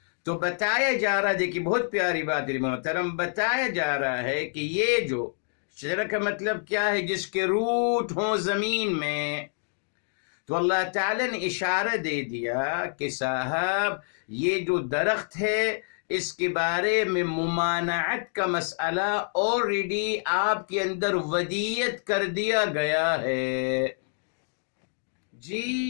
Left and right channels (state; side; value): silent; right; digital silence